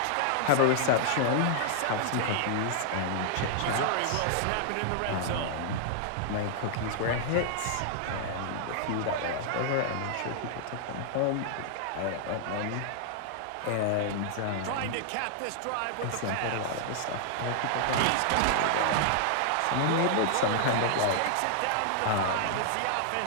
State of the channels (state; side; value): different; both; correlation -0.01